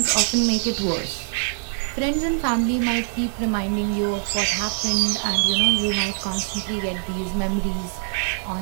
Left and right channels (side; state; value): left; silent; 63 dB below the other